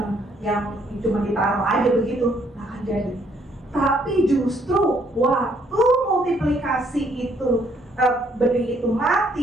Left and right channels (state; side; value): normal; both; correlation 0.67